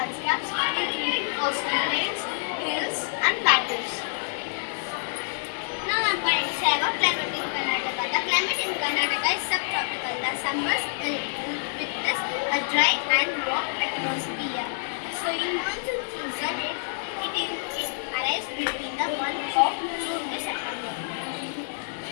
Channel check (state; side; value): silent; right; 60 dB below the other